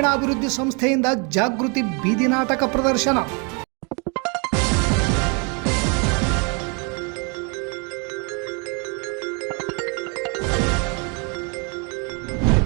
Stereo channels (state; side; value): quieter; left; 33.9 dB